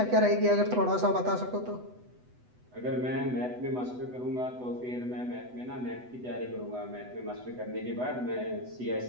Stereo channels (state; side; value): late; left; 8.0 ms